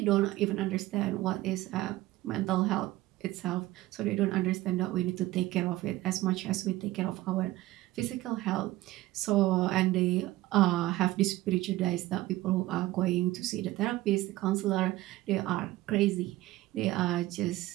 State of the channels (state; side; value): quieter; left; 17.3 dB